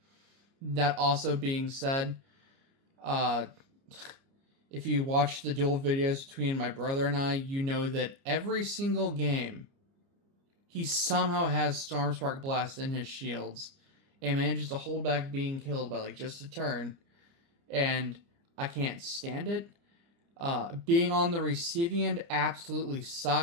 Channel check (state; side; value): late; left; 29 ms